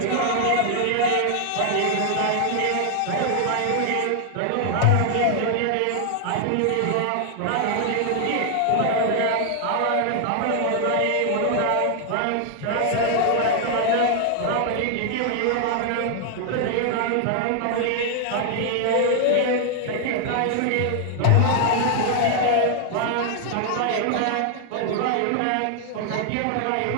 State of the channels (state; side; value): different; both; correlation 0.00